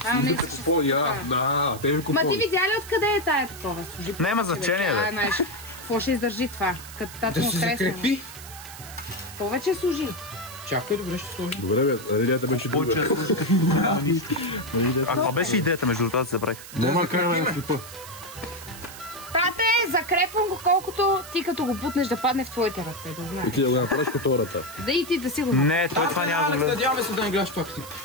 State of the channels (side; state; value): right; noise; hiss, 15 dB below the sound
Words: Да, те ви Ма ти видя ли откъде е тая такова? Няма значение, бе. Какво ще издържи това? Да се закрепи. Повече служи. Чакай, добре ще сложи. Добре бе, идеята беше друга. А каква беше идеята между това да забравих? Нема караме на клипа. Тате, закрепвам го колкото ти като го бутнеш да падне в твоите ръце, да знаеш. И ти да го направиш като хората. Да и ти да си го направиш. Не, той това няма да гледа. Надяваме се да не гледаш това клип.